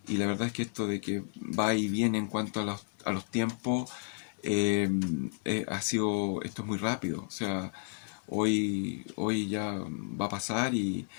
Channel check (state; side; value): silent; right; digital silence